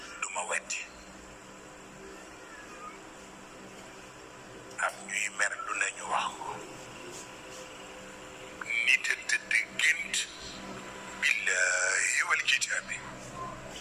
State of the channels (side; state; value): both; identical; correlation 1.00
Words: wetti am ñuy mer lu nañu wax ko nit a tëdd gént billahi wal kitaabi